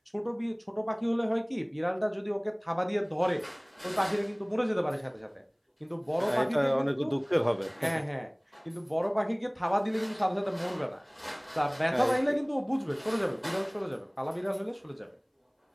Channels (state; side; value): identical; both; correlation 1.00